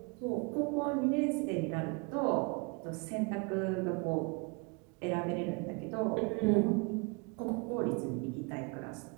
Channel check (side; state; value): left; quieter; 31.0 dB